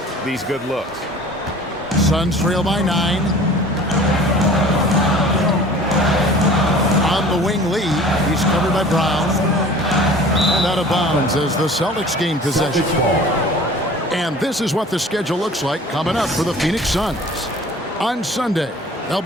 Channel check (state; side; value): normal; both; correlation 0.45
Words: these good looks. Suns trail by 9. On the wing, Lee. He's covered by Brown. And out of bounds as the Celtics gain possession. And this is what the schedule looks like coming up for the Phoenix Suns. On Sunday, they'll